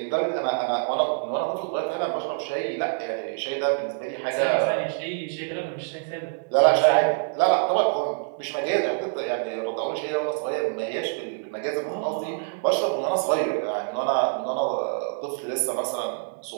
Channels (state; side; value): silent; left; 60 dB below the other